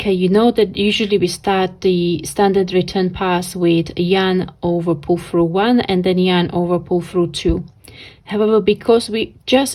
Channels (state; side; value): identical; both; correlation 1.00